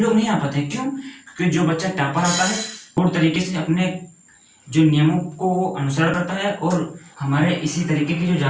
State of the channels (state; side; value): identical; both; correlation 1.00